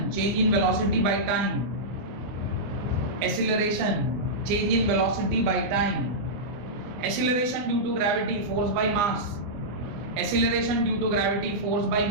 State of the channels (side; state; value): left; late; 24 ms